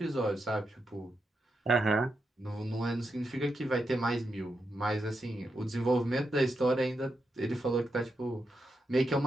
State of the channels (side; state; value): both; normal; correlation 0.85